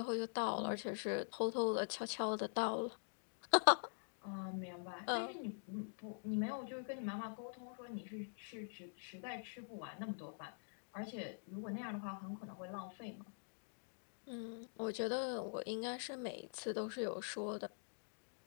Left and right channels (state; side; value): silent; right; digital silence